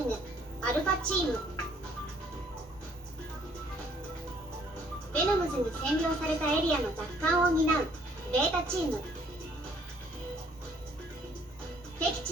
ぐアルファチーム。ベノムズに占領されたエリアの奪還を担うベータチーム。敵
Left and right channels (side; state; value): both; normal; correlation 0.62